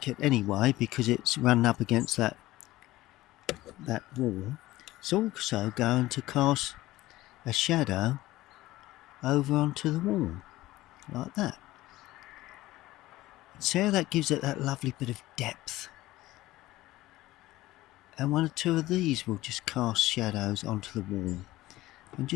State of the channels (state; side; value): quieter; right; 17.1 dB